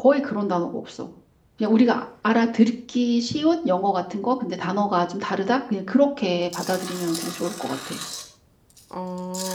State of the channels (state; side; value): identical; both; correlation 1.00